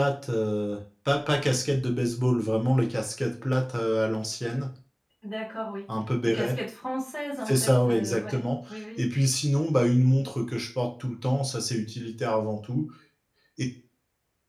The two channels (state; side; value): identical; both; correlation 1.00